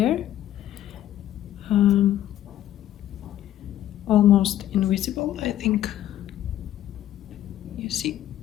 almost invisible, I think. You see.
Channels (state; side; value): quieter; right; 12.3 dB